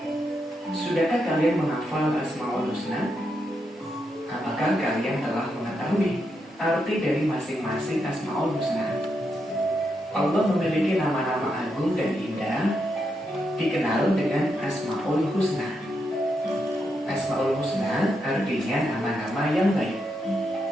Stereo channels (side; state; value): both; normal; correlation 0.82